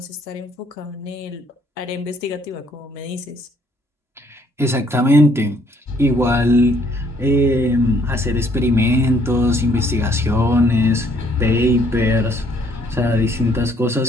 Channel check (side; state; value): both; normal; correlation 0.65